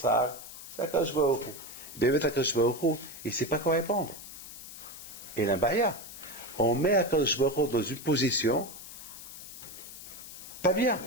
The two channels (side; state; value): left; noise; hiss, 13 dB below the sound